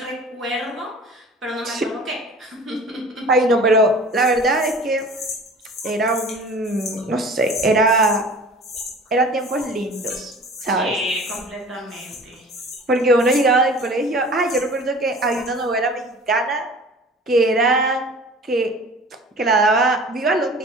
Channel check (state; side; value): normal; both; correlation 0.43